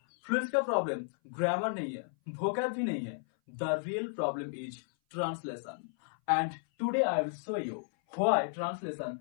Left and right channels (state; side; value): silent; right; 55 dB below the other